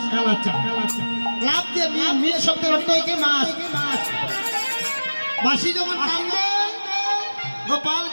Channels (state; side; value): inverted; both; correlation -1.00